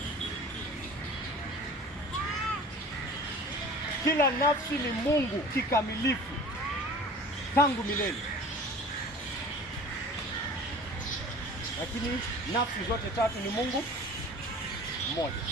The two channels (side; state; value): both; normal; correlation 0.42